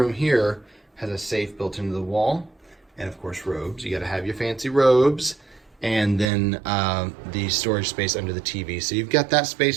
here has a safe built into the wall, and of course robes. You got to have your fancy robes. And then the storage space under the TV. So you've got that space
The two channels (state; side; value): drops out; left; at 6.3 s